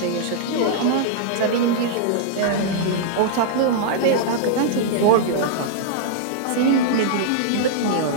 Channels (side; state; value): both; different; correlation -0.01